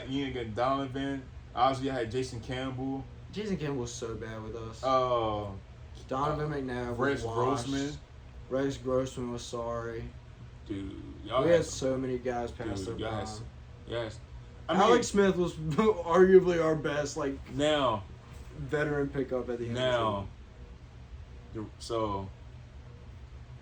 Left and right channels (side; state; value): both; identical; correlation 1.00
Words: Ian got Donovan. Obviously, I had Jason Campbell. Jason Campbell was so bad with us. Donovan McNabb Rex was washed. Grossman. Rex Grossman was sorry. Dude, y'all We had had so many guys past their y'all prime. had yes. I mean, Alex Smith was arguably our best now veteran pickup at the end. Now, so